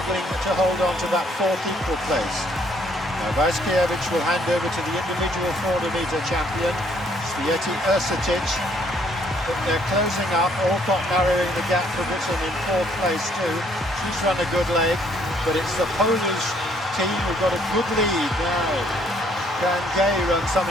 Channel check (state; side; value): normal; both; correlation 0.65